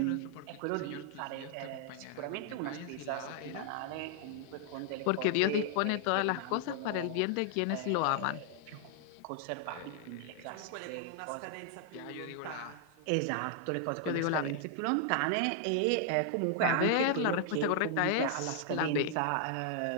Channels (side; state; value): both; different; correlation 0.00